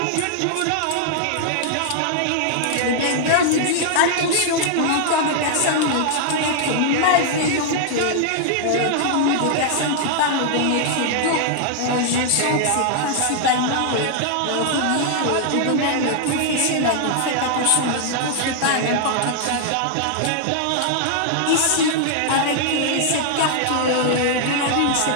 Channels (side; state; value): both; different; correlation -0.01